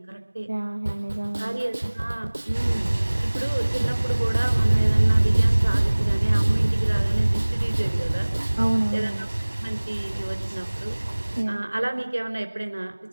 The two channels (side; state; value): both; inverted; correlation -1.00